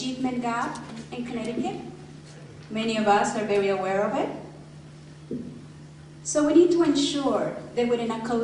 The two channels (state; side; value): identical; both; correlation 1.00